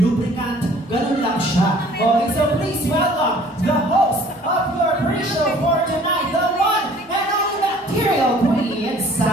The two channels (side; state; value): both; normal; correlation 0.53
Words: ganun lang siya. Okay, so please welcome the host of your pre-show for tonight, the one and only Bacterial Queen,